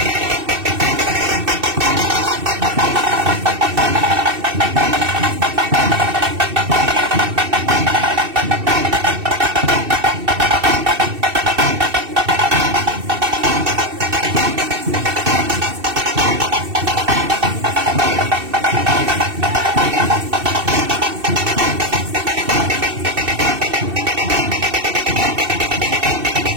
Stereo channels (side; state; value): left; late; 2.7 ms